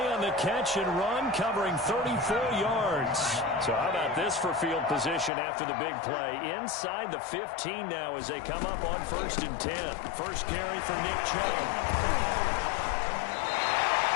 on the catch and run, covering 34 yards. So how about this for field position after the big play? Inside the 15 now as they come up on 1st and 10. First carry for Nick Chubb.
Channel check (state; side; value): drops out; right; at 5.3 s